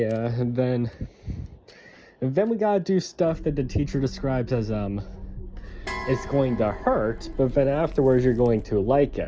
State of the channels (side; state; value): both; identical; correlation 1.00